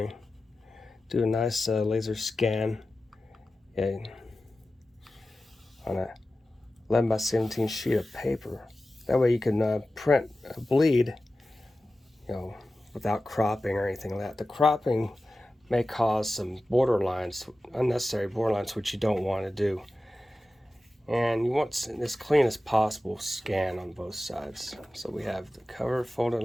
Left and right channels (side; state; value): both; normal; correlation 0.95